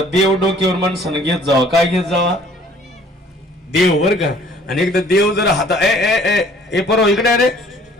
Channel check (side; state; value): both; normal; correlation 0.56